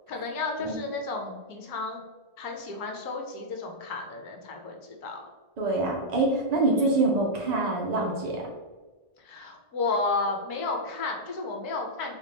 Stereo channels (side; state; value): left; late; 1.9 ms